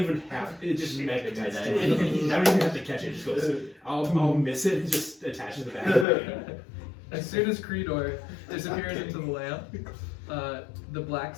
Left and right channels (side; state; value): right; drops out; at 6.1 s